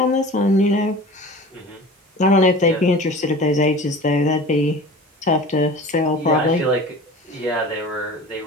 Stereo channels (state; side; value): normal; both; correlation 0.39